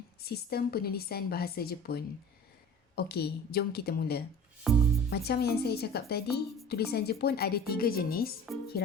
sistem penulisan bahasa Jepun. Okey, jom kita mula. Macam yang saya cakap tadi, tulisan Jepun ada 3 jenis,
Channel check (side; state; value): both; normal; correlation 0.41